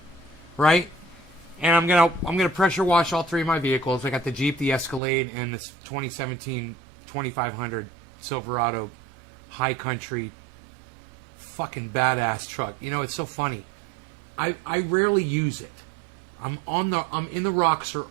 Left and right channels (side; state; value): left; drops out; at 5.0 s